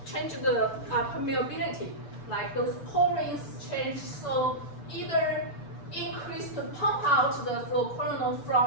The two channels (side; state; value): right; late; 6.9 ms